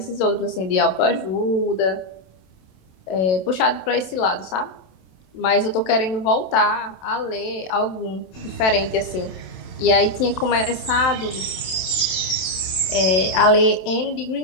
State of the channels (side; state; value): right; late; 27 ms